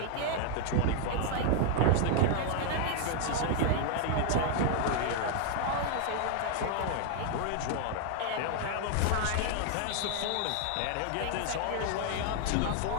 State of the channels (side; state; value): both; different; correlation 0.00